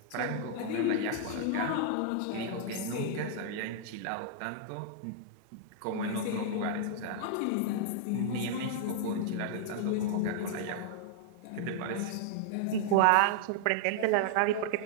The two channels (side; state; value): both; different; correlation -0.01